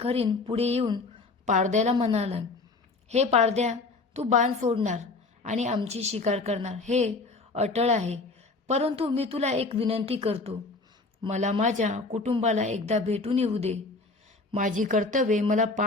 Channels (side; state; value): right; quieter; 3.7 dB